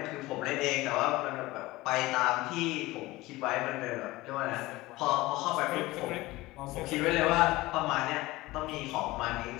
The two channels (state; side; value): quieter; right; 19.5 dB